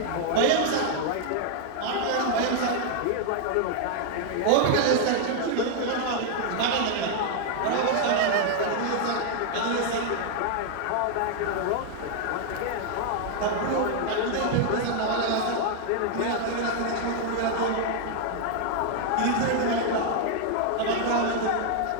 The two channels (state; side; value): different; both; correlation 0.00